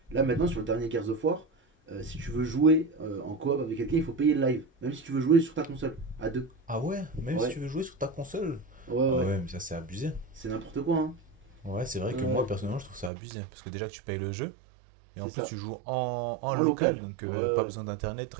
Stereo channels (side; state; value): left; drops out; at 13.1 s